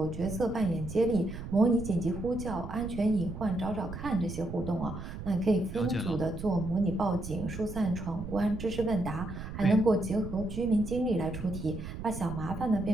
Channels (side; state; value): right; noise; rumble, 9 dB below the sound